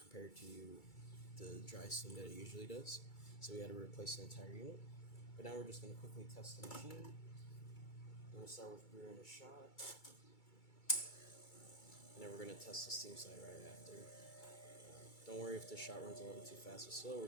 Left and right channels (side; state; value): right; late; 2.3 ms